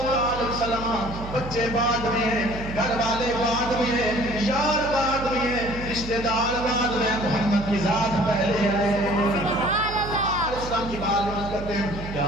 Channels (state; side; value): noise; right; hum, 10 dB below the sound